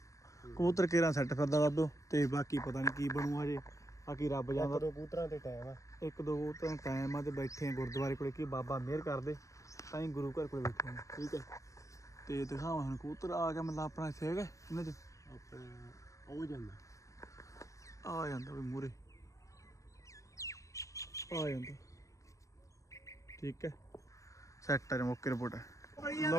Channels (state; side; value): late; right; 0.16 ms